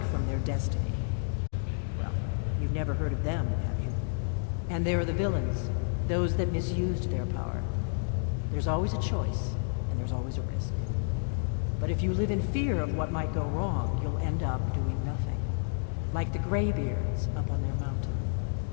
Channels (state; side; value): silent; right; digital silence